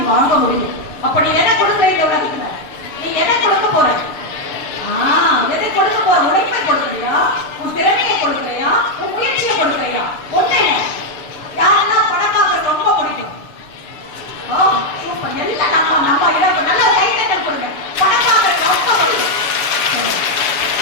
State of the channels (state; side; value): late; right; 7.0 ms